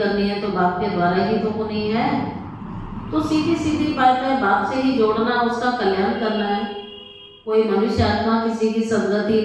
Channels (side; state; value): both; identical; correlation 1.00